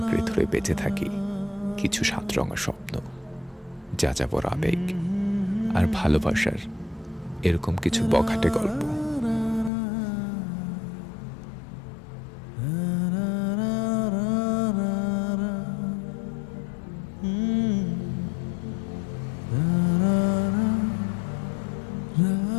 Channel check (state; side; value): drops out; right; at 9.7 s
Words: ধরে বেঁচে থাকি কিছু সাতরঙা স্বপ্ন, যাযাবর আবেগ আর ভালোবাসার এরকম কিছু বখাটে গল্প।